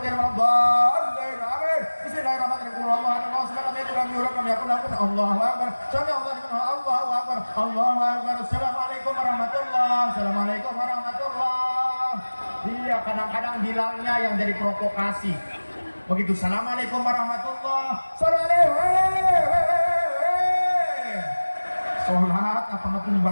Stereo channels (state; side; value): inverted; both; correlation -1.00